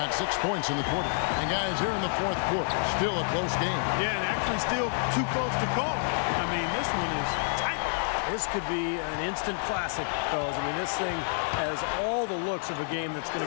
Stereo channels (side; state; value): right; silent; digital silence